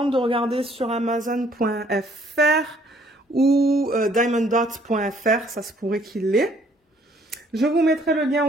de regarder sur Amazon.fr ou diamonddots.fr, ça se pourrait qu'il l'ait. Je vous mettrai le lien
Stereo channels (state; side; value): normal; both; correlation 0.63